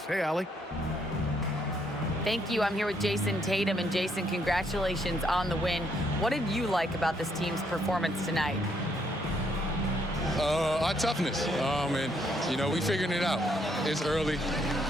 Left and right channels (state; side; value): normal; both; correlation 0.72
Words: Hey, Allie. Thank you. I'm here with Jason Tatum. And Jason, congratulations on the win. What did you like about this team's performance tonight? Our toughness. And, you know, we figuring it out. It's early,